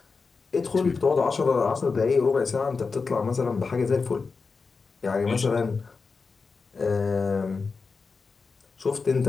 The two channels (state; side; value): quieter; right; 4.6 dB